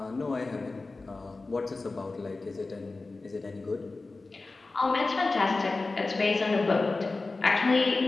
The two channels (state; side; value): quieter; right; 3.5 dB